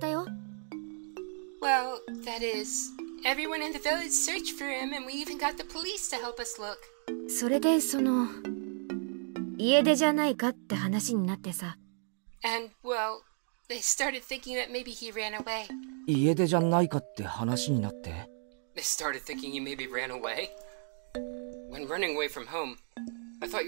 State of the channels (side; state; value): left; silent; 56 dB below the other